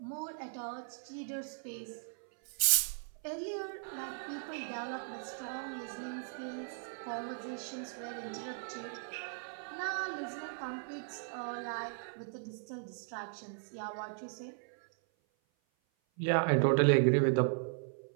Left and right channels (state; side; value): silent; left; 53 dB below the other